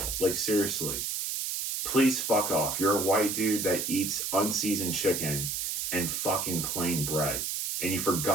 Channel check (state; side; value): noise; right; hiss, 2 dB below the sound